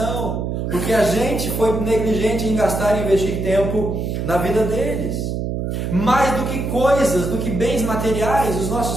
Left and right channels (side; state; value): right; noise; hum, 2 dB below the sound